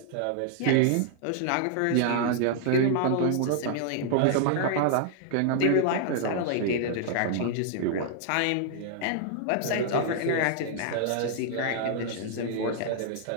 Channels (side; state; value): both; different; correlation -0.01